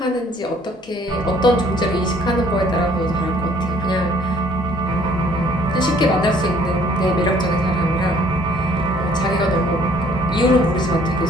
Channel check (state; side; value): normal; both; correlation 0.59